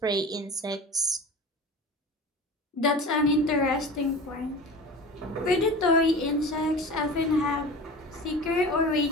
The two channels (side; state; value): both; normal; correlation 0.34